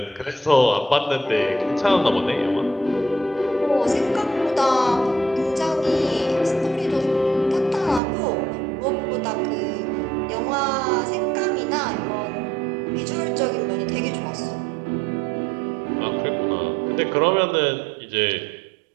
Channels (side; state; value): left; drops out; at 8.0 s